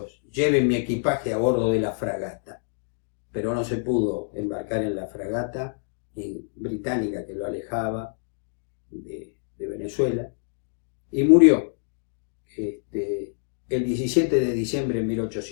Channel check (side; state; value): right; silent; digital silence